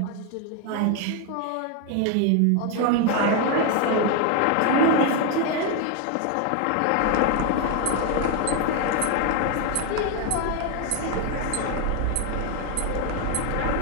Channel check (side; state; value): both; different; correlation 0.01